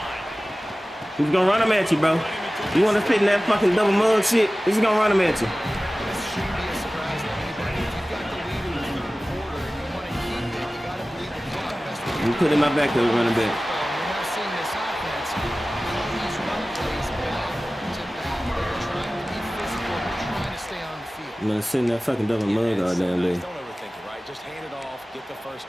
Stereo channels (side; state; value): both; normal; correlation 0.97